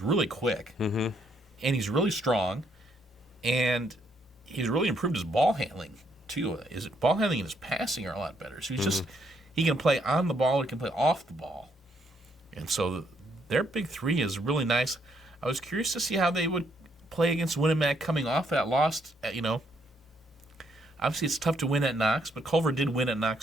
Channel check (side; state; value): both; normal; correlation 0.72